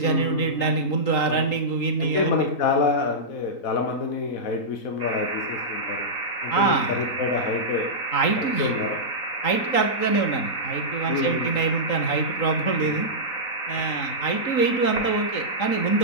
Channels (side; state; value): right; late; 3.8 ms